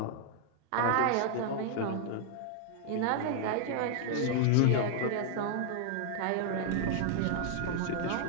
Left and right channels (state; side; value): different; both; correlation 0.00